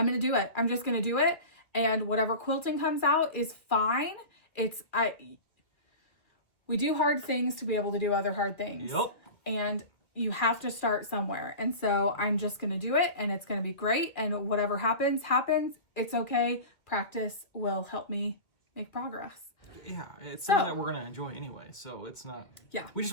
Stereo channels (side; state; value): right; late; 2.0 ms